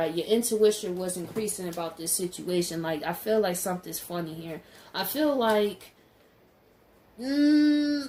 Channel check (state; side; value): identical; both; correlation 1.00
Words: Your intuition was increasing about this situation. Like, I feel like something's funny here. I feel like,